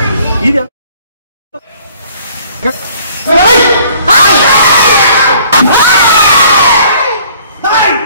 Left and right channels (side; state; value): both; inverted; correlation -0.57